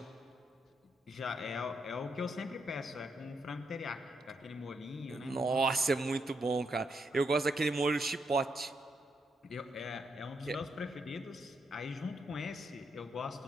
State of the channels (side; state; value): both; normal; correlation 0.79